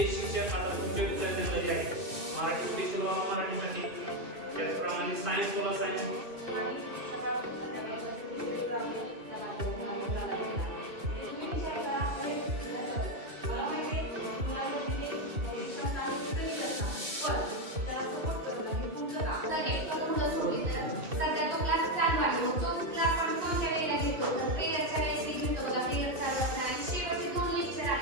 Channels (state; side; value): late; left; 2.6 ms